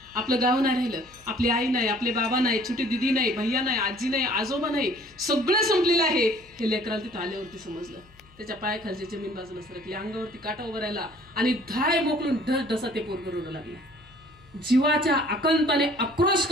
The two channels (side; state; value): left; noise; hum, 27 dB below the sound